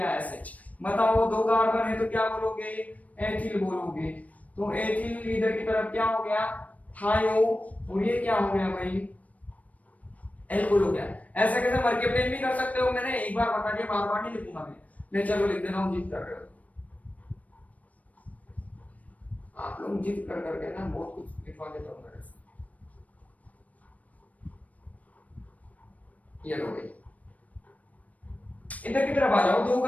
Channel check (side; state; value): right; late; 0.070 ms